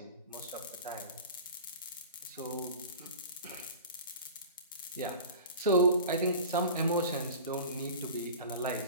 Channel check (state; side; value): inverted; both; correlation -0.37